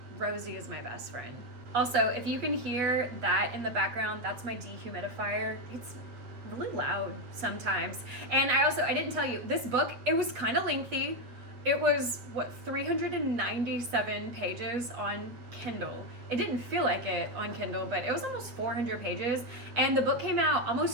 Rosie is my best friend. Also, if you can hear that in the background, that's my dehumidifier. It's really loud sometimes. And I didn't tell you, this book, it was kind of lengthy. It was, 397 pages on Kindle. It didn't feel like it on Kindle, but it was almost 400 pages. And the book came out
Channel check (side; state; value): left; late; 8.0 ms